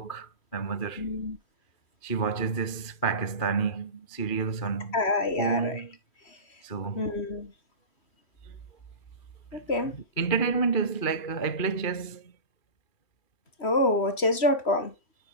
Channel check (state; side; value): late; right; 3.1 ms